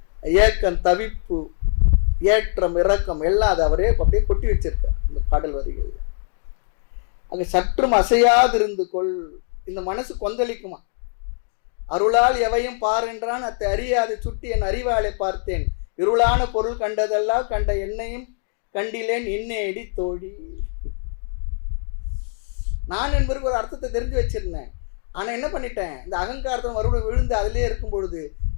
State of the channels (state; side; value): silent; right; 64 dB below the other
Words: ஏக்கம், தவிப்பு, ஏற்றம், இறக்கம் எல்லாம் அதை அவரே அப்படியே கொட்டி வச்சிருக்கார் இந்த பாடல் வரிகள். அங்கே சற்றும் அசையாதிருந்து கொள். இந்த மனசு கொந்தளிக்குமா. அருளால் எவையும் பார் என்றான், அத்தை அறியாது சுட்டி என் அறிவாளை பார்த்தேன், இருளான பொருள் கண்டதெல்லாம் கண்ட என்னையும் கண்டிலேன் இன்னேடி தோழி. நான் என்பதற்கு ஒரு அர்த்தத்தை தெரிஞ்சு வச்சிருந்தேன். ஆனால் என்ன பண்ணிட்டேன், இந்த அகங்காரத்தை மறுபடியும் விழுந்து அதிலே இருக்கும் பொழுது